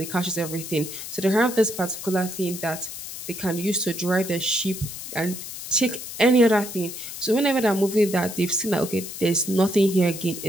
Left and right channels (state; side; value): noise; left; hiss, 9 dB below the sound